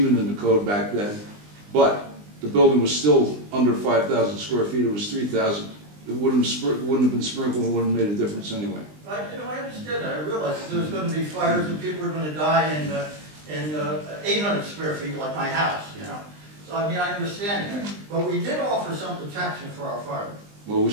in the code back then, but the building was still under 5,000 square feet. It was 3,000. It wouldn't have been sprinkled. It wouldn't have made a difference anyway. I understand that. I realize that there was going to be fires and people were going to die in 800 square feet like my house, you know. So, I mean, I understand that. But we did offer some protection for our firemen. Well, we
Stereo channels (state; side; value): late; left; 20 ms